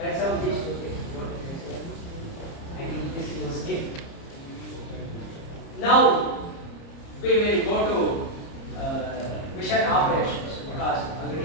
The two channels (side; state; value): right; late; 30 ms